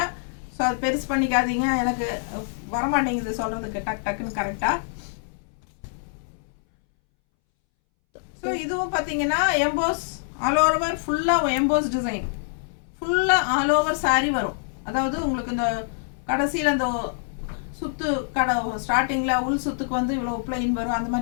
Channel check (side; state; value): right; silent; 62 dB below the other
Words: ஸோ அது பெருசு பண்ணிக்காதீங்க. எனக்கு வரமாட்டேங்குது சொல்கிறதுக்கு டக்குன்னு கரெக்டாக. ஸோ இதுவும் பார்த்தீங்கன்னா எம்போஸ் ஆல் ஓவர் ஃபுல்லாக எம்போஸ் டிசைன் ஃபுல்லாக ஆல் ஓவர் சாரீ வரும். அதாவது உங்களுக்கு இந்த கடைசியில் அந்த சுத்து கடை ஸ்டார்டிங்கில் உள் சுத்துக்கு வந்து இவ்வளோ பிளைன் வரும், அந்த